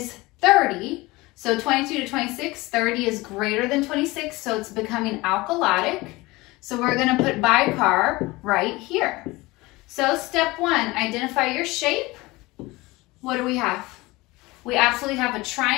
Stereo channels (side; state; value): right; quieter; 21.6 dB